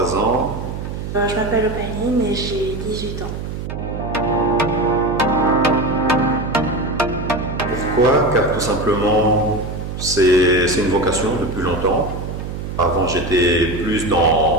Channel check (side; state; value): right; noise; hum, 7 dB below the sound